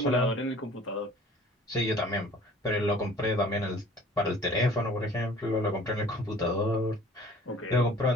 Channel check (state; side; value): normal; both; correlation 0.49